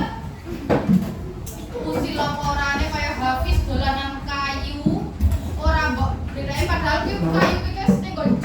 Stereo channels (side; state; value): both; identical; correlation 1.00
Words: usil orane kayak Hafiz dolanan kayu, ora mbok bedane padahal ki kayu ki wis ning nggon